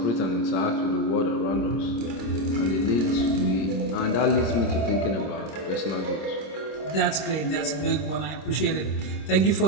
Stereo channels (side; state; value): right; late; 26 ms